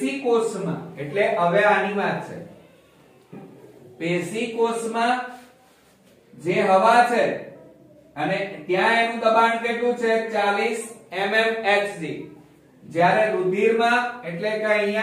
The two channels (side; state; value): both; identical; correlation 1.00